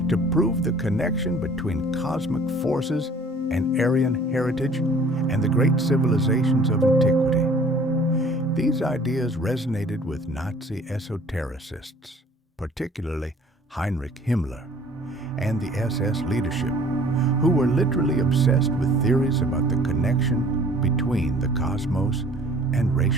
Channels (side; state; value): both; normal; correlation 0.52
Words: to prove the connection between cosmic forces and Aryan heritage and the great civilizations of antiquity. These ideas resonated with Nazi esotericists, particularly Heinrich Himmler and the SS leadership, who were literally obsessed with theories about the connection between the cosmos and